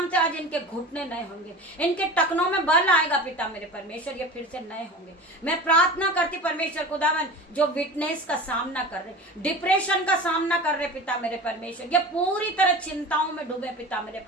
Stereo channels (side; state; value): both; normal; correlation 0.34